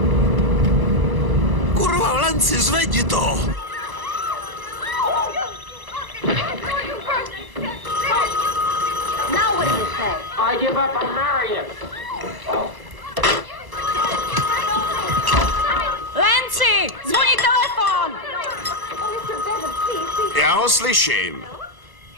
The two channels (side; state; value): left; late; 1.1 ms